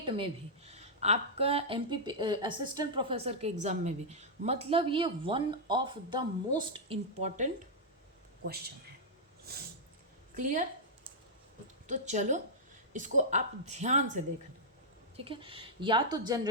में भी, आपका MP असिस्टेंट प्रोफेसर के एग्ज़ाम में भी, मतलब ये one of the most important question है। क्लियर? तो चलो इसको आप ध्यान से देखना, ठीक है। या तो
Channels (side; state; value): both; normal; correlation -0.08